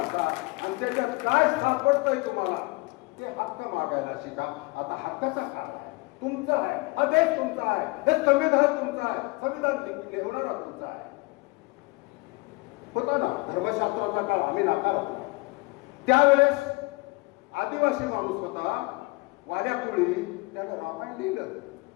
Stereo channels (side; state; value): right; quieter; 25.8 dB